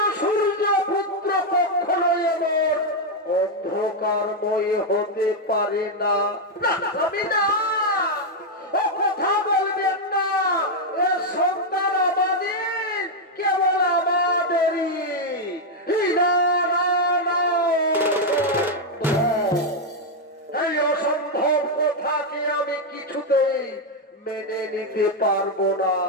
সূর্য পুত্র কখনোই এমন অন্ধকারময় হতে পারে না। ও কথা বলবেন না, এ সন্তান আমাদের, কেবল আমাদেরই। এই অসম্ভব কথাকে আমি কিছুতেই মেনে নিতে পারবো না,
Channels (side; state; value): both; normal; correlation 0.01